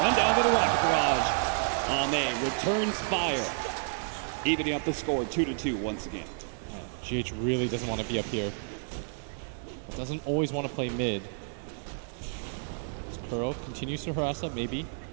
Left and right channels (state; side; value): silent; left; digital silence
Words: down by the Rocket Barrage. Ame returns fire, evening up the score 2-2 once again. GH really doesn't want to be up here. Doesn't always want to play mid. Kuro continues to harass up, maybe.